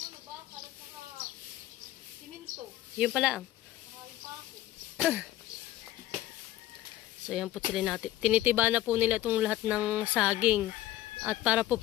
Yun pala ang. So yan po sila natin. Tinitiba na po nila itong lahat ng saging. At para po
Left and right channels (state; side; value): quieter; right; 14.5 dB